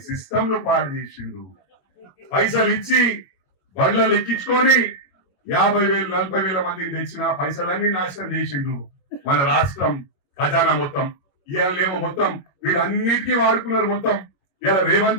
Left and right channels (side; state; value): right; late; 21 ms